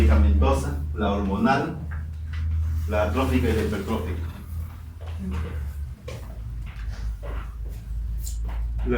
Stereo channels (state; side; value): identical; both; correlation 1.00